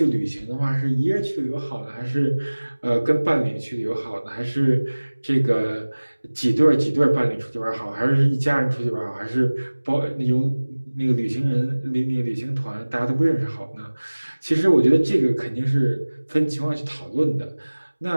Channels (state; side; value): inverted; both; correlation -1.00